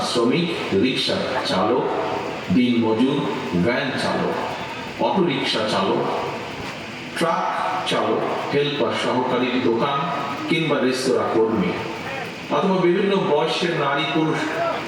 শ্রমিক, রিক্সা চালক, দিনমজুর, ভ্যান চালক, অটোরিক্সা চালক, ট্রাক চালক, হেল্পার, সহকারী, দোকান কিংবা রেস্তোরাঁ কর্মী অথবা বিভিন্ন বয়সের নারী পুরুষ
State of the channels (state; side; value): identical; both; correlation 1.00